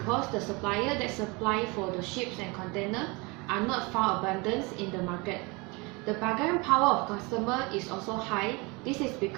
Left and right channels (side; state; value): left; quieter; 27.4 dB